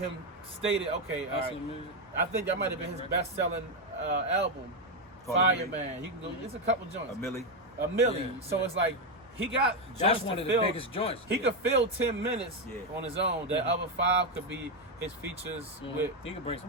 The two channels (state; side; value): normal; both; correlation 0.06